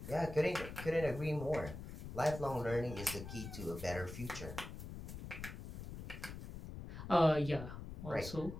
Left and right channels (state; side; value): noise; left; rumble, 9 dB below the sound